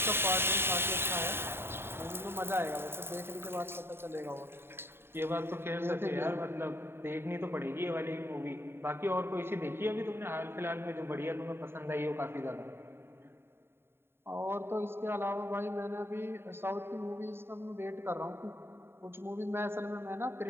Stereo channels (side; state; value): left; late; 0.11 ms